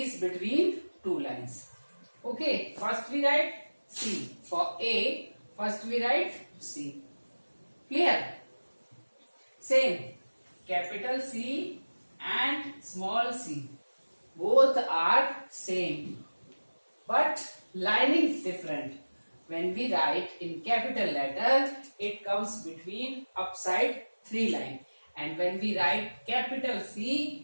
between two lines. Okay. First we write C. For A, first we write C. Clear? Same, capital C and small c, both are same, but lining is different. When we write in capital letter, it comes between upside three line, and when we write capital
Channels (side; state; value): both; inverted; correlation -1.00